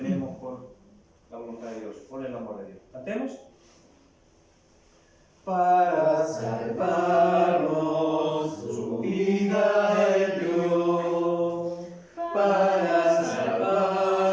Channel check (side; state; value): both; identical; correlation 1.00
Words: por la voluntad de Dios, por el amor de Dios. ¿Cantemos? Para salvarnos, su vida Él dio.